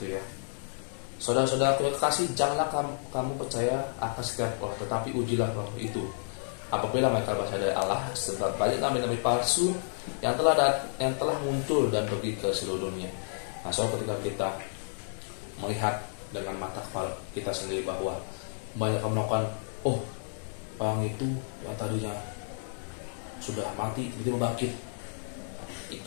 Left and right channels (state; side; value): silent; right; 57 dB below the other